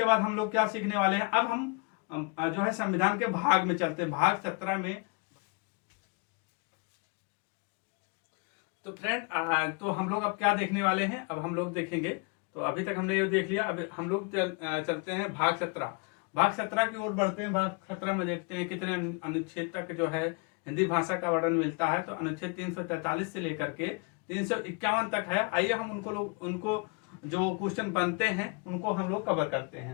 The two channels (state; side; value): quieter; right; 33.0 dB